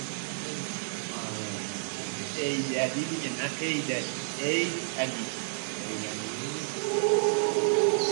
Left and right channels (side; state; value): left; silent; digital silence